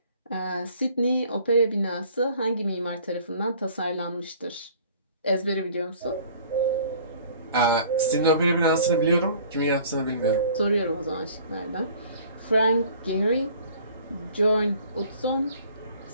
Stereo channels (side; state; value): both; inverted; correlation -0.52